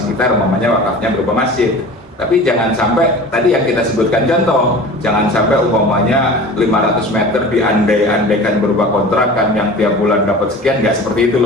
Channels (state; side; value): normal; both; correlation 0.38